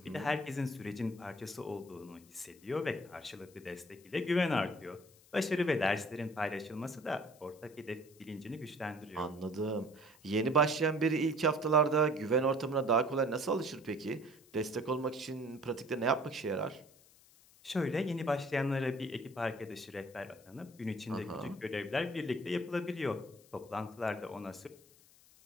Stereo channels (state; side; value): noise; left; hiss, 26 dB below the sound